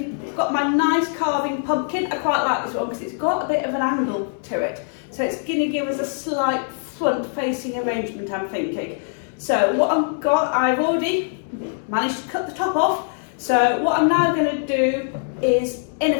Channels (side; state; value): right; silent; digital silence